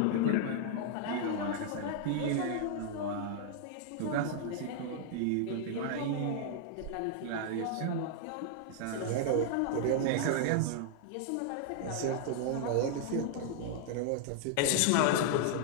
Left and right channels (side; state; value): both; different; correlation -0.01